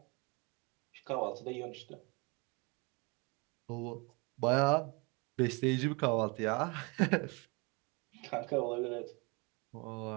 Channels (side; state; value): left; quieter; 29.4 dB